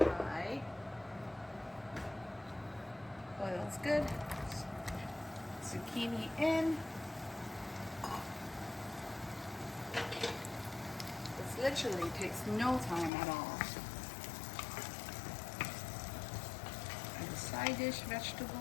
Oil's good. Zucchini in. This literally takes no time at all. And a side dish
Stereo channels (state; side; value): drops out; right; at 13.1 s